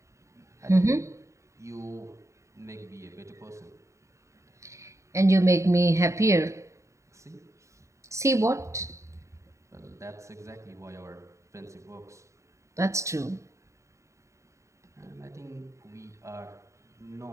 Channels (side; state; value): left; late; 0.14 ms